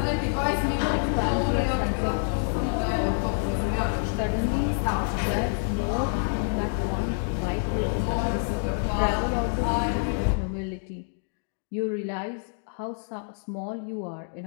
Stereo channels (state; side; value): silent; right; digital silence